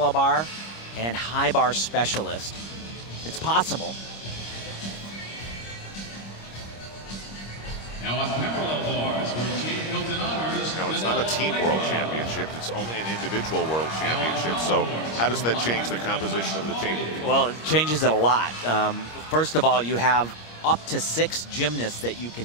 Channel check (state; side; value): late; right; 25 ms